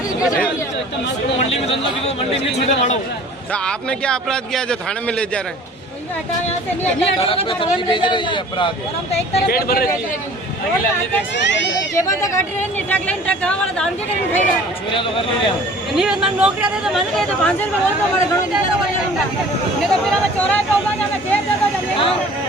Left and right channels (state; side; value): normal; both; correlation 0.48